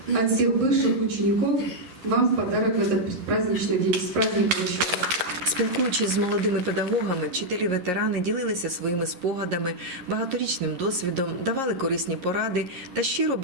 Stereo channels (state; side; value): late; left; 11 ms